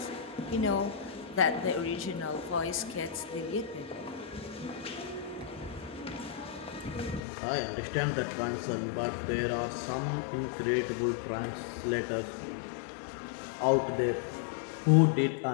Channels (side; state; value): right; drops out; at 7.2 s